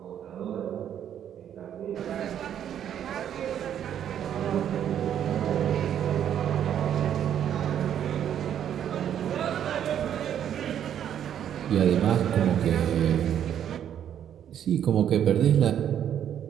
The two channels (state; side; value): quieter; left; 9.7 dB